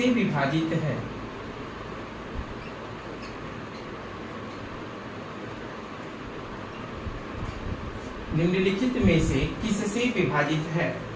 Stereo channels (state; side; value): identical; both; correlation 1.00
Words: विभाजित है? निम्नलिखित में से किससे विभाजित है?